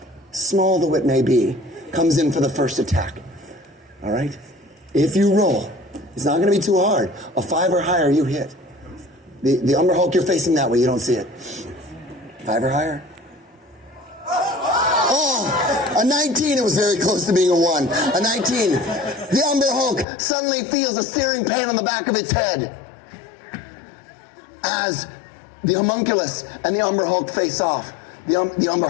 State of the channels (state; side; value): drops out; right; at 20.1 s